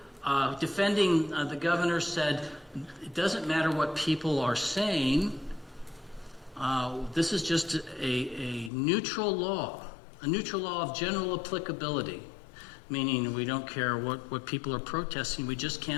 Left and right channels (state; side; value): drops out; right; at 8.7 s